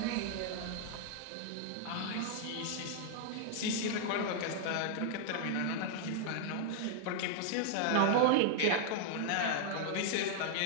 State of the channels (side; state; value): both; different; correlation -0.01